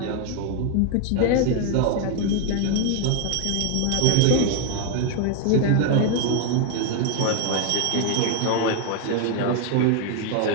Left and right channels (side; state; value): both; different; correlation 0.01